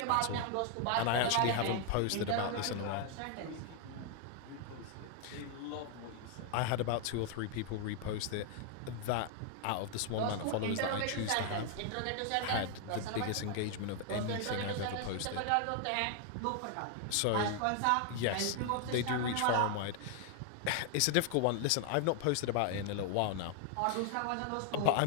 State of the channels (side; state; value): both; different; correlation 0.00